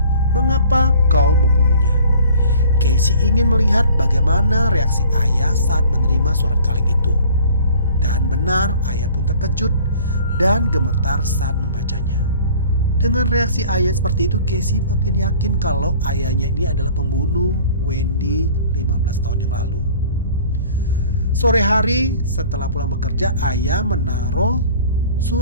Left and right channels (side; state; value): both; inverted; correlation -0.49